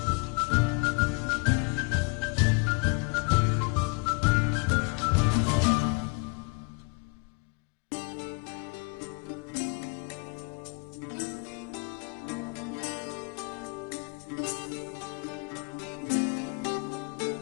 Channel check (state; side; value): quieter; right; 32.3 dB